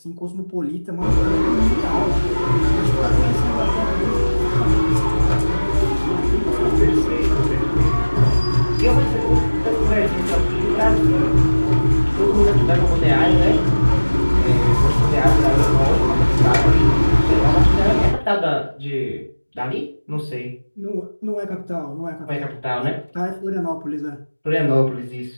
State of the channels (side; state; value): both; inverted; correlation -1.00